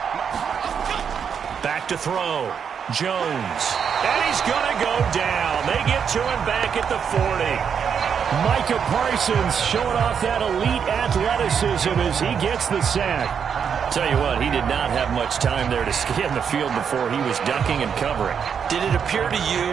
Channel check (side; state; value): left; quieter; 7.2 dB